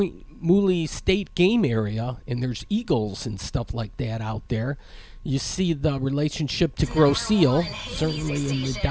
Mooley State game area, and there's eagles and stuff like that out there. You see the relationship to Grosse Ile, certainly in the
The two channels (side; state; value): both; identical; correlation 1.00